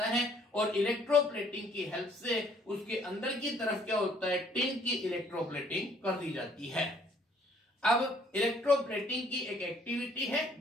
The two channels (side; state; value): both; normal; correlation 0.62